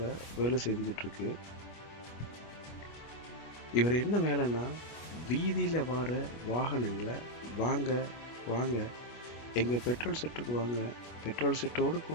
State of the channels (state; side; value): late; right; 25 ms